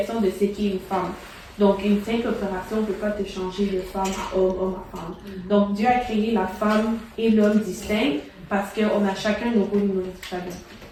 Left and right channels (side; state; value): both; identical; correlation 1.00